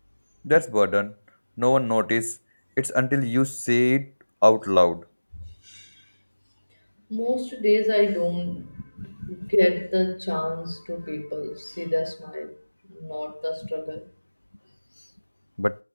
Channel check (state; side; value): inverted; both; correlation -1.00